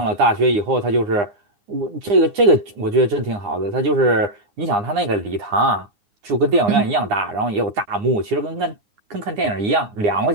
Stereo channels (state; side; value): late; left; 9.9 ms